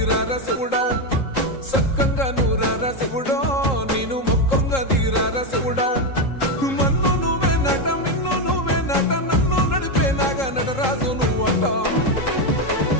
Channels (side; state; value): right; late; 3.7 ms